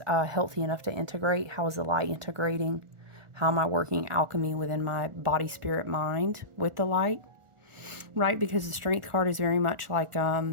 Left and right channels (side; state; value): left; late; 1.4 ms